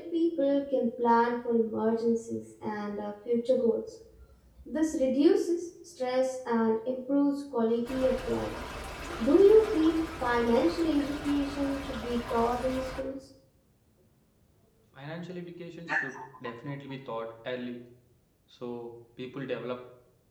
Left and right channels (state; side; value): identical; both; correlation 1.00